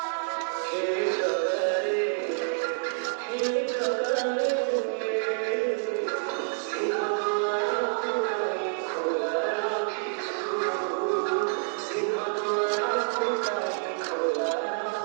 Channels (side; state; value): left; silent; digital silence